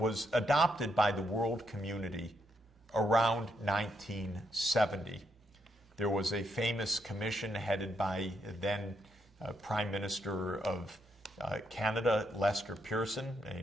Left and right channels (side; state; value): both; normal; correlation 0.78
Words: adopted by the world community around 1970. There was a famous commission headed by then Prime Minister of Canada, Lester Pearson,